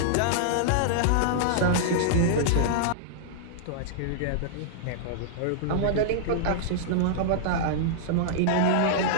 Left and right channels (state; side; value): different; both; correlation -0.02